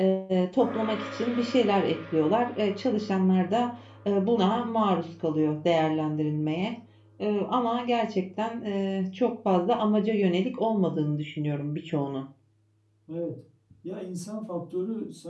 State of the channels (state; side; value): identical; both; correlation 1.00